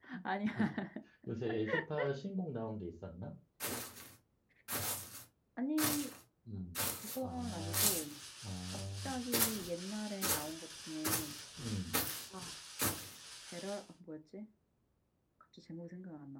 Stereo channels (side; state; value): both; identical; correlation 1.00